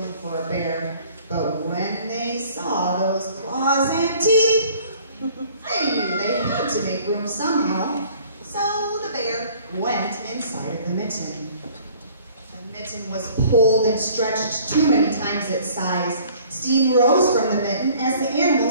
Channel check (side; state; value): both; inverted; correlation -0.53